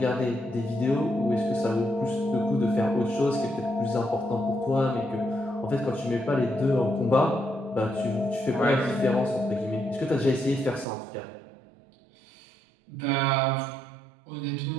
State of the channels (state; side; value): drops out; left; at 10.9 s